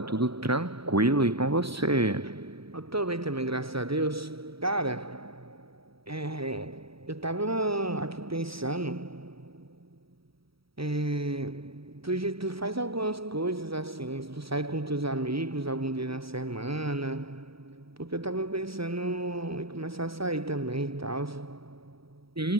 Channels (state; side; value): late; left; 0.75 ms